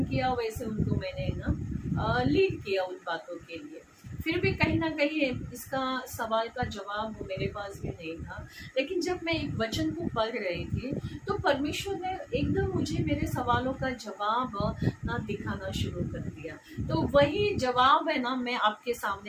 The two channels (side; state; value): both; identical; correlation 1.00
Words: किया, वैसे उनको मैंने ना लीड किया उन बातों के लिए। फिर भी कहीं ना कहीं इसका सवाल का जवाब मेरे पास भी नहीं था। लेकिन जब मैं एक वचन को पढ़ रही थी तो परमेश्वर ने एकदम मुझे मेरे सवालों का जवाब ना दिखाना शुरू कर दिया। तो वही जवाब है ना मैं आपके